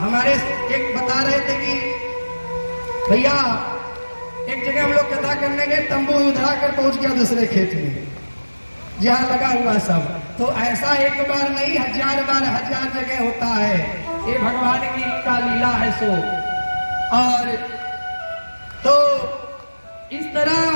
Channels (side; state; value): both; inverted; correlation -1.00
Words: एक बता रहे थे कि भैया एक जगह हम लोग कथा करने गए, तंबू उधरा कर पहुंच गया दूसरे खेत में जहाँ लगा हुआ सब। तो ऐसा एक बार नहीं 1000 बार 1000 जगह होता है, ये भगवान की का लीला है सो। और तो इस तरह